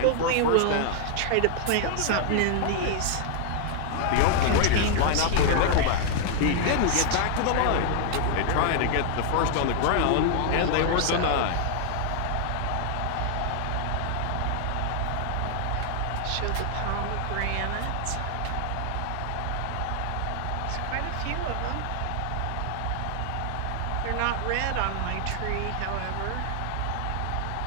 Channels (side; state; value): both; different; correlation 0.00